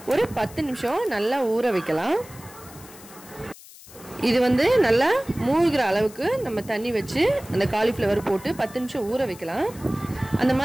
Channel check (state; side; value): noise; left; hiss, 20 dB below the sound